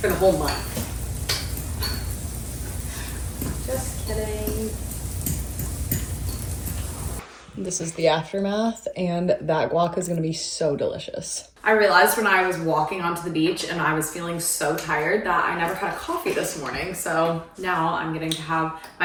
for the whole month. Just kidding. This is the aftermath, and that guac is gonna be so delicious. I realized when I was walking onto the beach and I was feeling so tired that I never had a coffee this morning. So now I'm getting to have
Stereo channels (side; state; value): both; identical; correlation 1.00